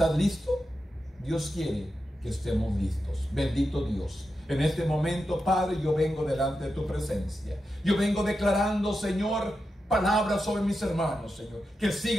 listo? Dios quiere que estemos listos. Bendito Dios. En este momento, Padre, yo vengo delante de tu presencia. Yo vengo declarando, Señor, palabras sobre mis hermanos, Señor, que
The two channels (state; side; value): normal; both; correlation 0.89